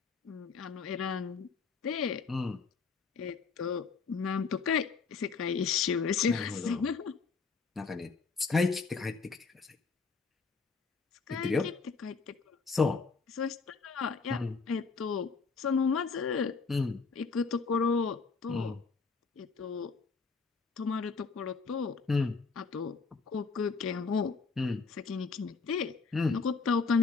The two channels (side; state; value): right; quieter; 4.8 dB